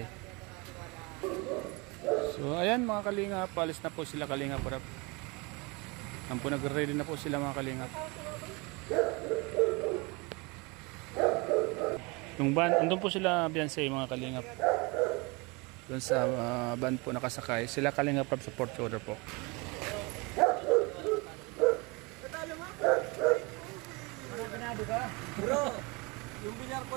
So ayan mga kalingap, palis na po sila kalingap. Ang po nagre-ready na po sila mga kalingap. Yung van, andun po sila Beyonce mga kalingap. Doon sa van po nakasakay. Sila kalingap sa support shoulder po. Bro, yung bilyar ko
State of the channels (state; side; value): quieter; left; 27.6 dB